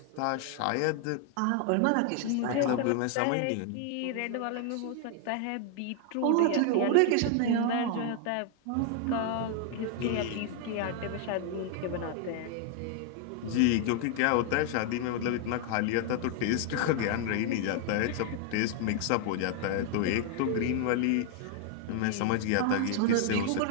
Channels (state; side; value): different; both; correlation 0.00